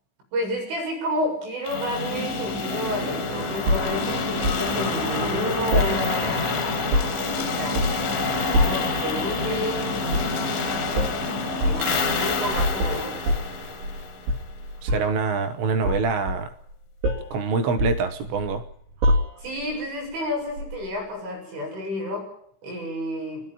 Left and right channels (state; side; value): late; left; 15 ms